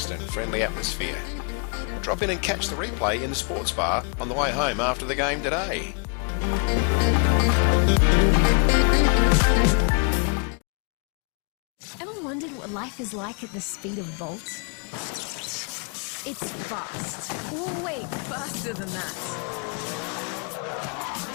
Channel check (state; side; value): quieter; right; 36.7 dB